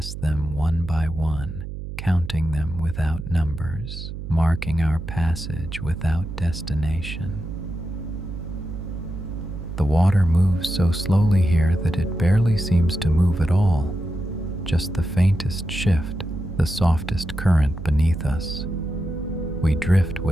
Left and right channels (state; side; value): noise; right; hum, 8 dB below the sound